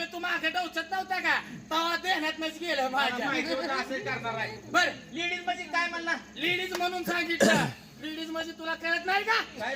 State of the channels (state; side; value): identical; both; correlation 1.00